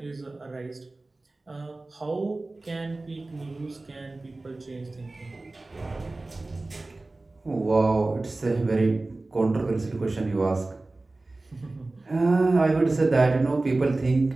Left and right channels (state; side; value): quieter; left; 3.1 dB